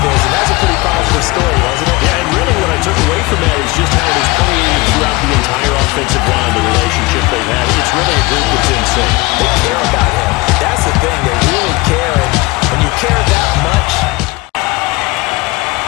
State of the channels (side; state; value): right; quieter; 23.1 dB